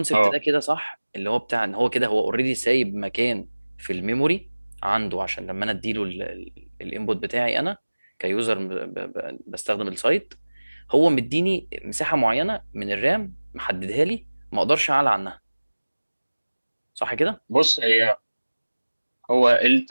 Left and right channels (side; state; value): both; inverted; correlation -1.00